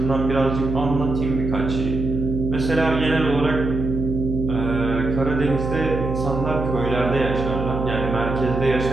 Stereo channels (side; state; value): right; noise; hum, 4 dB below the sound